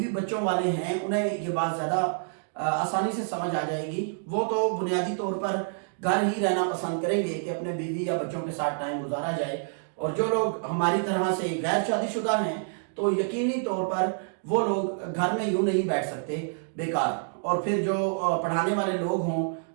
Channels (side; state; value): left; silent; digital silence